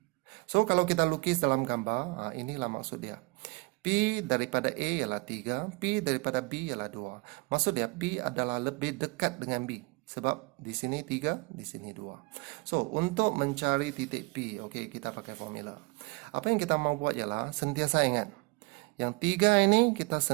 So, kalau kita lukis dalam gambar, inilah maksud dia. P daripada A ialah 3, P daripada B ialah 2. Maksud dia, P adalah lebih dekat dengan B. Sebab di sini 3, di sini 2. So, untuk mencari titik P, okey, kita pakai formula. Apa yang kita mau buat ialah, sentiasa ingat. Yang 3 ini kita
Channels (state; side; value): quieter; left; 27.3 dB